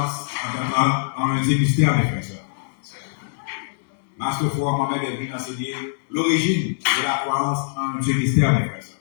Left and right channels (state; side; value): silent; right; digital silence